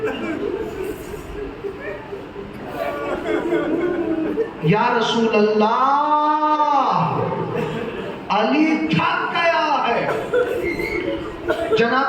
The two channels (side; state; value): both; identical; correlation 1.00